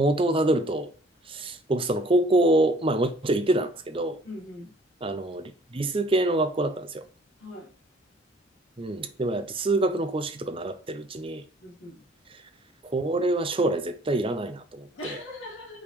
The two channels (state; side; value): normal; both; correlation 0.56